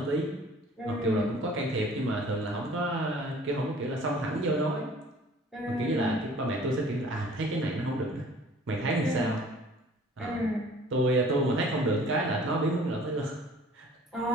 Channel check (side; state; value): both; normal; correlation 0.51